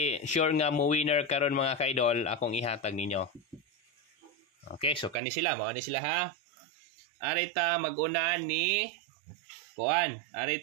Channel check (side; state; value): left; drops out; at 5.2 s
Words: sure nga mo winner karon mga kaidol, akong ihatag ninyo. Okay, so kani sila, mao ni sila ha. Arita mag-una ni kuan,